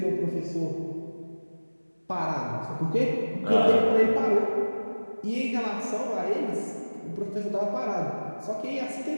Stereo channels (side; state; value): both; inverted; correlation -1.00